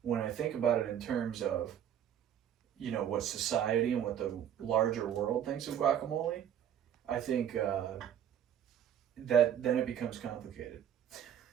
when I think about it in terms of, you know, what society and what the larger world thinks of guacamole, I think that then it becomes complicated.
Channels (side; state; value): left; quieter; 9.7 dB